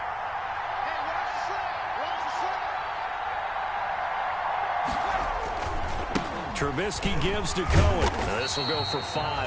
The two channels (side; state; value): both; identical; correlation 1.00